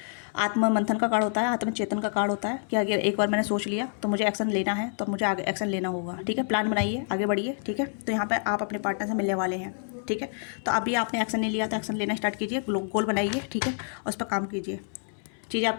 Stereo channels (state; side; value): silent; right; 60 dB below the other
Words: आत्म मंथन का कार्ड होता है, आत्मचेतन का कार्ड होता है कि अगर एक बार मैंने सोच लिया तो मुझे एक्शन लेना है, तो मुझे आगे एक्शन लेना होगा। ठीक है, प्लान बनाइए, आगे बढ़िए। ठीक है, तो यहाँ पर आप अपने पार्टनर से मिलने वाले हैं। ठीक है, तो अभी आपने एक्शन नहीं लिया तो एक्शन लेना स्टार्ट कीजिए, गोल बनाइए। ठीक है, और उस पर काम कीजिए। चीज़ें